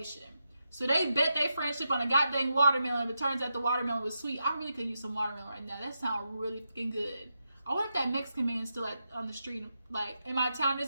So they bet their friendship on a goddamn watermelon, but it turns out the watermelon was sweet. I really could use some watermelon right now. That sounds really fucking good. I wonder if that Mexican man is still on the street. Like, in my town, there's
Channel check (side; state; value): both; inverted; correlation -0.86